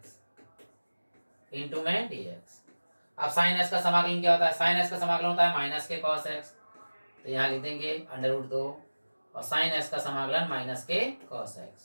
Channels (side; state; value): both; inverted; correlation -1.00